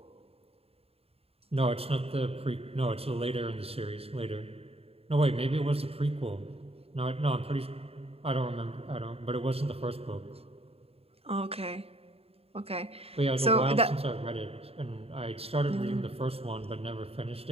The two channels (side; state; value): left; late; 0.29 ms